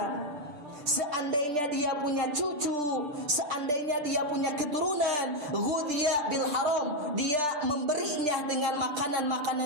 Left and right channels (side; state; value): left; late; 6.8 ms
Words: seandainya dia punya cucu, seandainya dia punya keturunan, ghudhiya bil haram, dia memberinya dengan